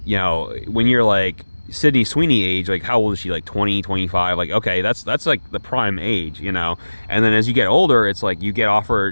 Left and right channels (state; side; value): inverted; both; correlation -1.00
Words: when you're like Sydney Sweeney age, like how old is she? Like 20, 25? Like okay, that's like the prime age, And then as you get older, it's like you get